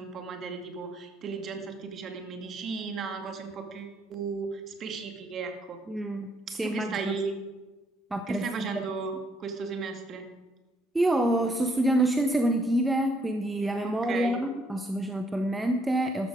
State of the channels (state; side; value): normal; both; correlation 0.70